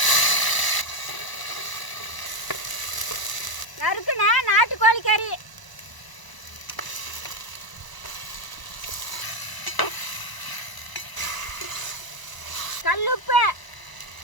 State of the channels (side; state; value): right; late; 1.0 ms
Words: நறுக்குன நாட்டுக்கோழி கறி, கல்லுப்பு,